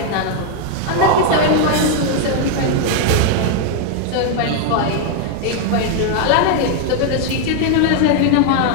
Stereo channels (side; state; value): both; different; correlation 0.00